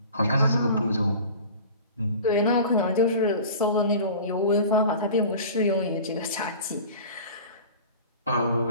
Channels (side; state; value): both; inverted; correlation -0.39